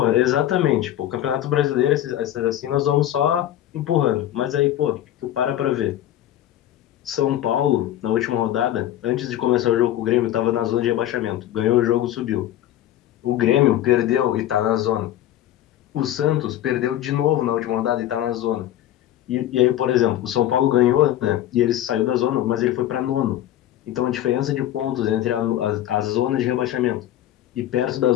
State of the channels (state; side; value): quieter; right; 12.6 dB